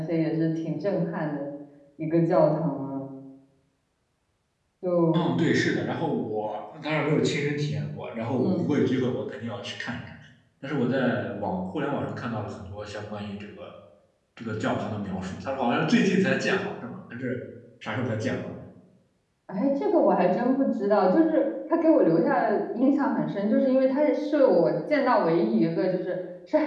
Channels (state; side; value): identical; both; correlation 1.00